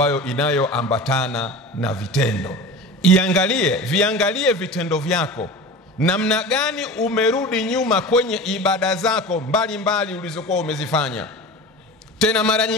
inayoambatana na vitendo. Viangalie vitendo vyako, namna gani umerudi nyuma kwenye ibada zako mbalimbali ulizokuwa umezifanya. Tena mara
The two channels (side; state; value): both; normal; correlation 0.33